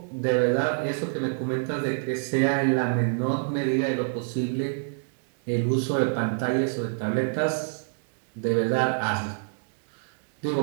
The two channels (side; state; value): left; silent; digital silence